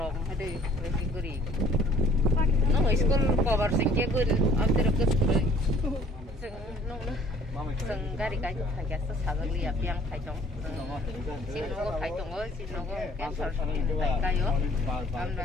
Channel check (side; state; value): both; normal; correlation 0.55